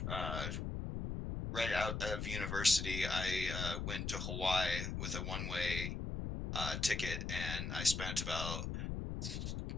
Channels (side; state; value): left; noise; rumble, 3 dB below the sound